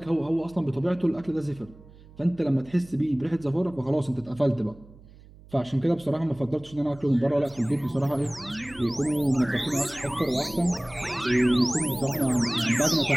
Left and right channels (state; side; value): noise; right; hum, 22 dB below the sound